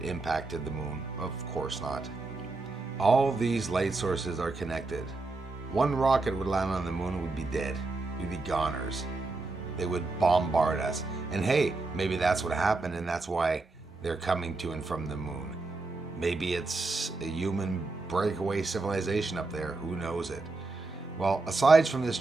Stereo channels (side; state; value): left; quieter; 3.5 dB